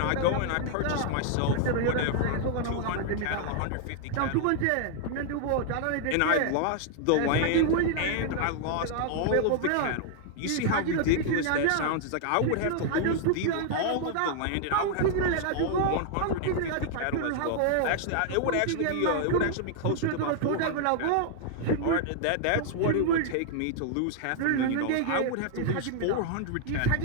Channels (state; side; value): different; both; correlation 0.00